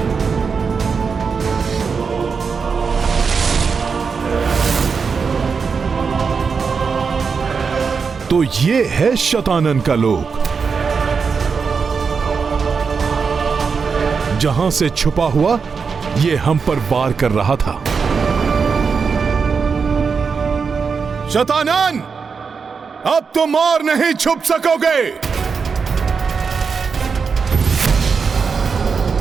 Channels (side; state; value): left; quieter; 5.5 dB